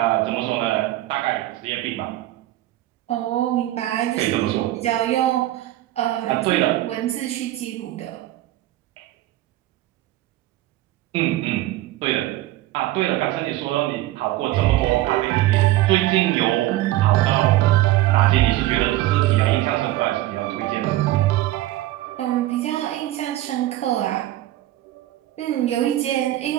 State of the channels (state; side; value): quieter; left; 15.5 dB